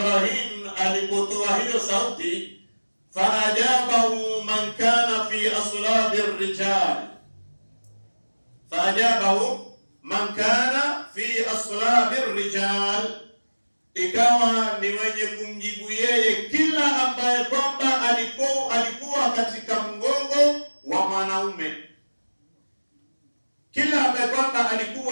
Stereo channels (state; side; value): inverted; both; correlation -1.00